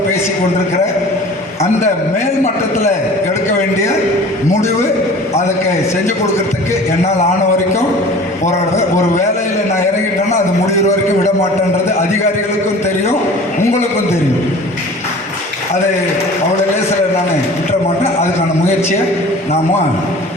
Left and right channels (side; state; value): both; normal; correlation 0.43